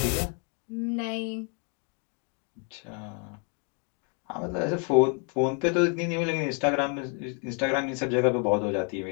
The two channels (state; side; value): quieter; right; 38.5 dB